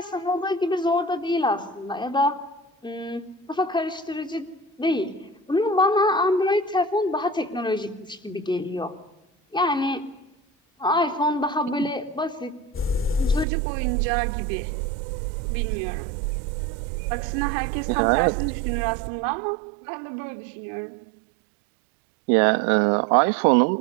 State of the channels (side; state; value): left; drops out; at 13.5 s